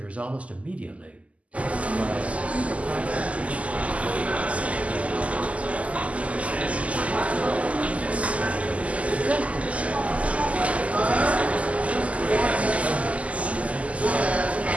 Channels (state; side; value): late; left; 0.066 ms